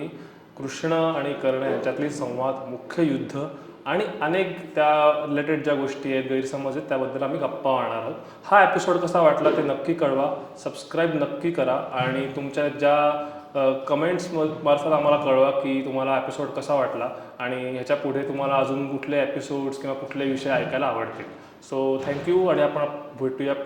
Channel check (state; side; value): identical; both; correlation 1.00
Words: कृष्ण आणि कर्ण यांच्यातली संवाद, मुख्य युद्ध आणि अनेक त्या रिलेटेड ज्या गोष्टी आहेत, गैरसमज आहेत, त्याबद्दल आम्ही गप्पा मारणार आहोत. हा एपिसोड कसा वाटला ते नक्की कळवा, सबस्क्राईब नक्की करा आणि तुमच्या ज्या कमेंट्स मार्फत आम्हाला कळवा की तुम्हाला एपिसोड कसा वाटला आणि ह्याच्या पुढे तुम्हाला अजून कुठले एपिसोड्स किंवा कुठले विषय ऐकायला आवडतील. सो थँक्यू, आणि आपण भेटूया